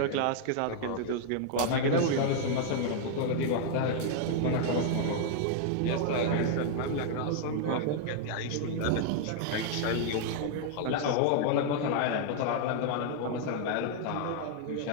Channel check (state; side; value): different; both; correlation 0.00